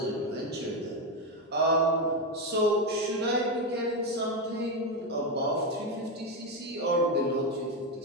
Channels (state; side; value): normal; both; correlation 0.10